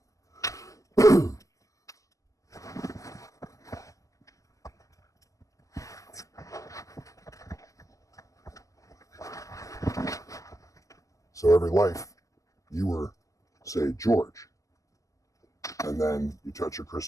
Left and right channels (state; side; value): late; right; 0.16 ms